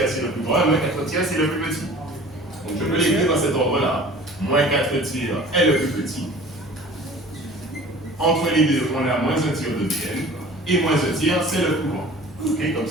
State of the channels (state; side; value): normal; both; correlation 0.44